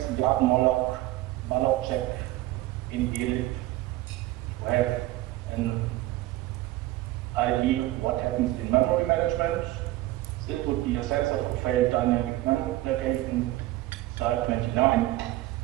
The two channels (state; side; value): quieter; left; 16.9 dB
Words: garden malloc check in elif to have an idea what happens in memory management. This would be a sense of a failed dynamic memory application, slide 29.